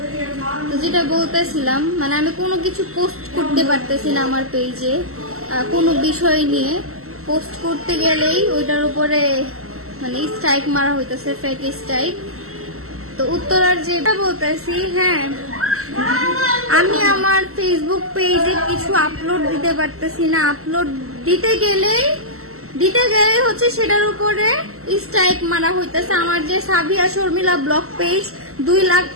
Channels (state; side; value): late; left; 0.63 ms